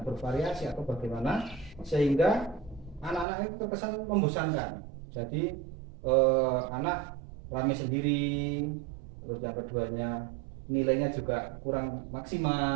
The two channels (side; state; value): left; drops out; at 3.2 s